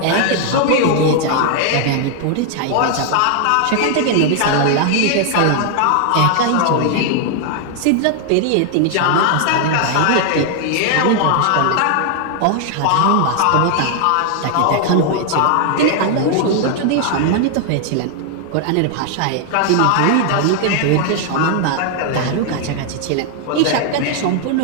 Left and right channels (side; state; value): both; different; correlation 0.00